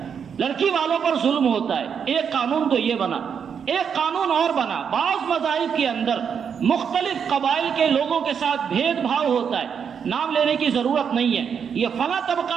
لڑکی والوں پر ظلم ہوتا ہے۔ ایک قانون تو یہ بنا۔ ایک قانون اور بنا، بعض مذاہب کے اندر مختلف قبائل کے لوگوں کے ساتھ بھید بھاؤ ہوتا ہے، نام لینے کی ضرورت نہیں ہے، یہ فلاں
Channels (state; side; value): quieter; left; 7.2 dB